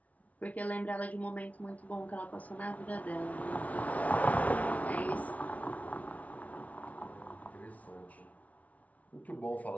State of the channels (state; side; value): late; right; 0.069 ms